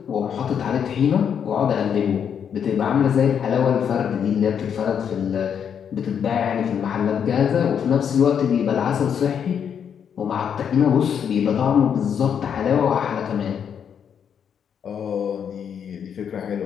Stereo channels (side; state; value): right; quieter; 7.9 dB